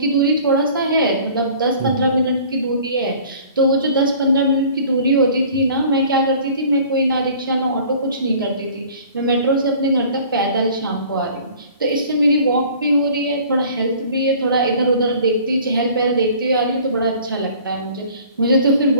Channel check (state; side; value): inverted; both; correlation -0.49